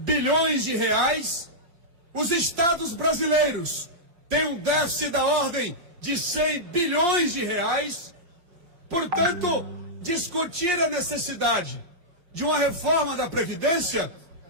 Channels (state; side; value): late; left; 5.7 ms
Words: de reais. Os estados brasileiros têm um déficit da ordem de 100 bilhões de reais. Portanto, discutir a necessidade de uma reforma da Previdência,